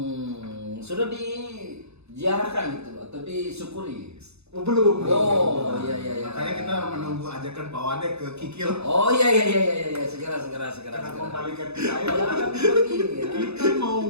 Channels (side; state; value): left; late; 0.80 ms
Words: Sudah diziarahkan gitu atau disyukuri? Oh, belum. Oh, iya. Makanya kita menunggu ajakan Pak Wadek ke Kikil. Oh iya. Segera. Karena kembalikan ke saya. Ya, kan begini ya.